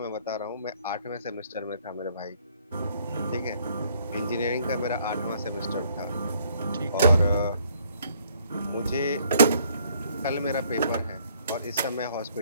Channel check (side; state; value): both; inverted; correlation -0.64